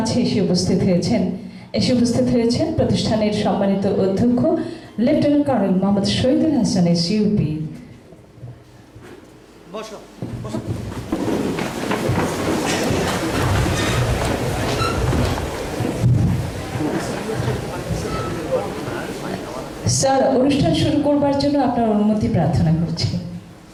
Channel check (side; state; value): both; identical; correlation 1.00